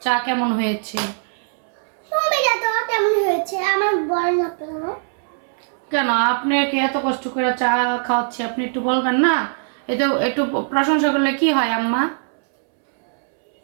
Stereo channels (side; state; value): left; silent; 65 dB below the other